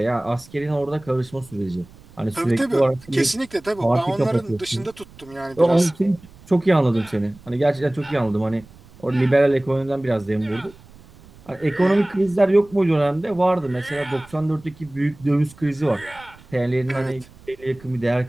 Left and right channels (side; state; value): right; noise; rumble, 23 dB below the sound